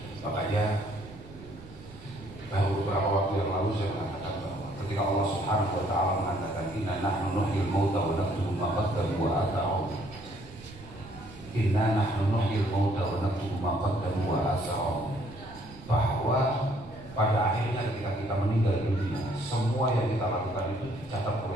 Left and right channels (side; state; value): right; noise; rumble, 18 dB below the sound